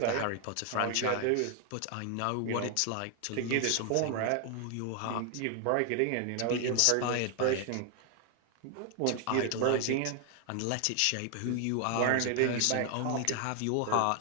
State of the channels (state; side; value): different; both; correlation 0.00